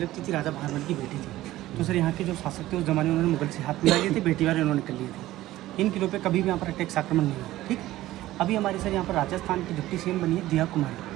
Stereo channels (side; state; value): left; quieter; 15.8 dB